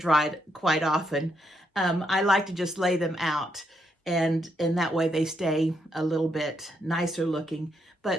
quite often. I like to just lay them out, and that way they stay a little bit nicer looking.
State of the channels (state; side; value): normal; both; correlation 0.78